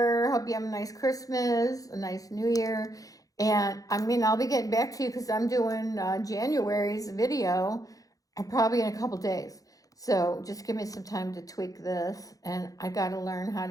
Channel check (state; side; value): late; right; 0.17 ms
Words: Hope you have a nice Christmas, a nice New Year. And I'll be getting back to you because I'm doing January's video probably in a couple days. So just give me some time to tweak this. And I got to learn how